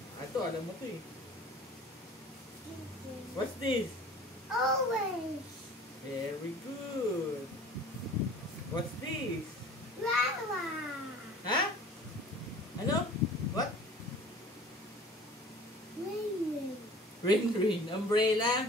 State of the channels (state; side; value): normal; both; correlation 0.45